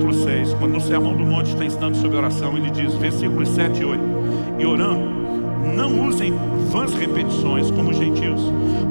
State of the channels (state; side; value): inverted; both; correlation -1.00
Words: 6, quando no Sermão do Monte está ensinando sobre oração, ele diz, versículos 7 e 8: e orando, não usem vãs repetições como os gentios,